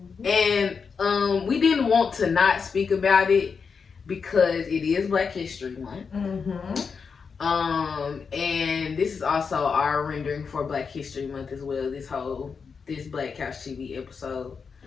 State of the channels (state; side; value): quieter; right; 5.7 dB